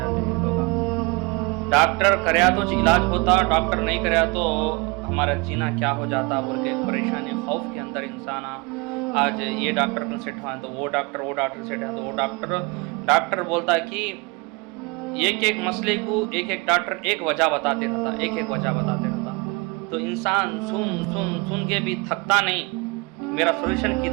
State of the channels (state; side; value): quieter; left; 27.8 dB